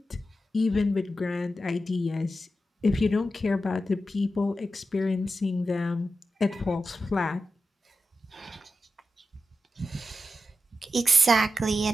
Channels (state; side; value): normal; both; correlation 0.90